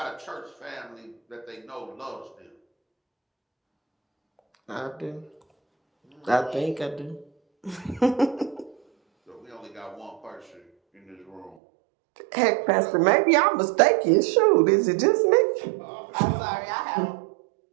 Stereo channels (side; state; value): left; drops out; at 11.6 s